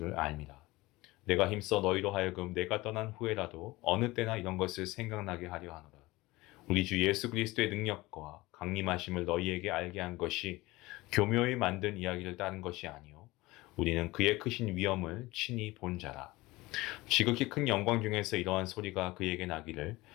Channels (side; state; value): right; quieter; 20.4 dB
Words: 압니다. 내가 힘써 너희로 하여금 내가 떠난 후에라도 어느 때나 이런 것을 생각나게 하려 하노라. 우리 주 예수 그리스도의 능력과 강림하심을 너희에게 알게 한 것이 교묘히 만든 이야기를 따른 것이 아니요 우리는 그의 크신 위엄을 친히 본 자라. 지극히 큰 영광 중에서 이러한 소리가 그에게 나기를